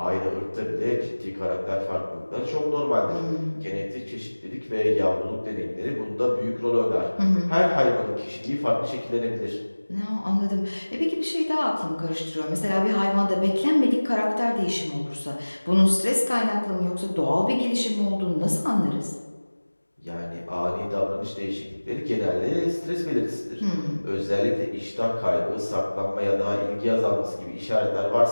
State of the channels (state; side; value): inverted; both; correlation -1.00